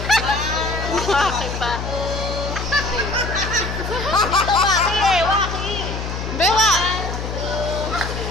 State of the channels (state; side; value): noise; left; hum, 5 dB below the sound